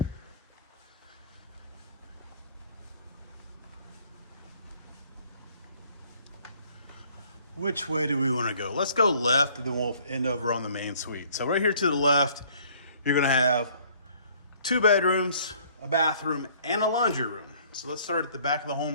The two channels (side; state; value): both; inverted; correlation -0.58